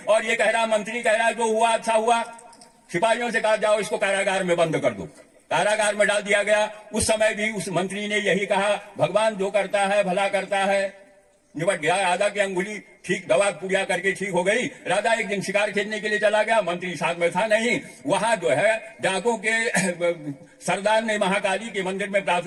और ये कह रहा, मंत्री कह रहा जो हुआ अच्छा हुआ। सिपाहियों से कहा जाओ इसको कारागार में बंद कर दो। कारागार में डाल दिया गया। उस समय भी उस मंत्री ने यही कहा, भगवान जो करता है भला करता है। निपट गया। राजा की अंगुली ठीक, दवा पूजा करके ठीक हो गई। राजा एक दिन शिकार खेलने के लिए चला गया, मंत्री साथ में था नहीं। वहां जो है डाकों के सरदार ने महाकाली के मंदिर में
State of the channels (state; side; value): identical; both; correlation 1.00